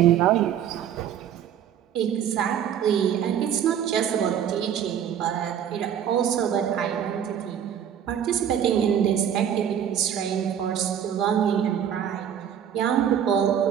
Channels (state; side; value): quieter; left; 9.3 dB